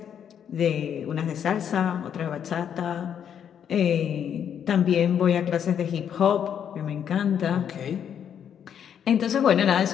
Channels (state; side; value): quieter; right; 8.6 dB